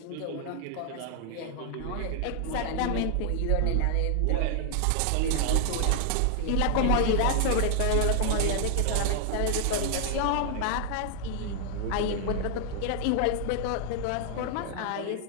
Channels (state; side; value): different; both; correlation 0.00